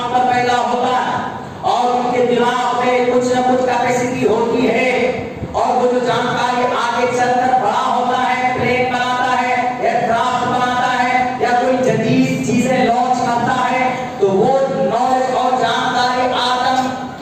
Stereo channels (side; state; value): both; identical; correlation 1.00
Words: پر پیدا ہوتا ہے اور ان کے دماغ میں کچھ نہ کچھ کیپیسٹی ہوتی ہے, اور وہ جو جانکاری آگے چل کر بڑا ہوتا ہے, پلین بناتا ہے, ایئرکرافٹ بناتا ہے, یا کوئی جدید چیزیں لانچ کرتا ہے, تو وہ نالج اور جانکاری آدم